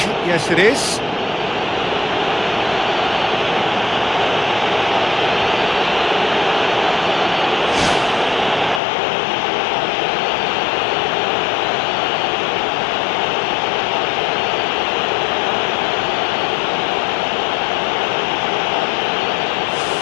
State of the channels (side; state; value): right; drops out; at 8.8 s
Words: Yes, it is.